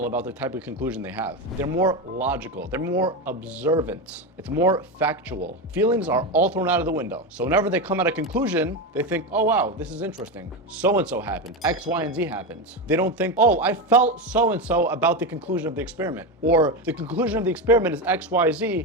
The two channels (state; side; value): normal; both; correlation 0.15